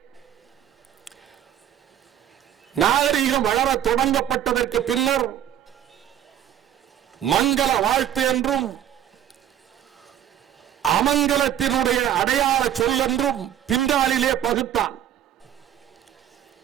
நாகரீகம் வளர தொடங்கப்பட்டதற்கு பின்னர் மங்கள வாழ்த்து என்றும் அமங்கலத்தினுடைய அடையாள சொல் என்றும் பின்னாளிலே பகுத்தான்.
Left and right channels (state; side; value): quieter; left; 10.8 dB